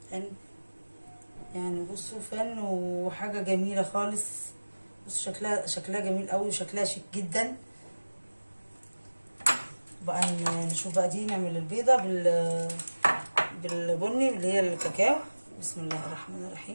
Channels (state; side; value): inverted; both; correlation -1.00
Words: فن، يعني بصوا فن وحاجه جميله خالص. بصوا شكلها جميل قوي وشكلها شيك جدا. بقى نشوف بقى دي نعمل البيضه بالبني اللي هي الكاكاو. بسم الله الرحمن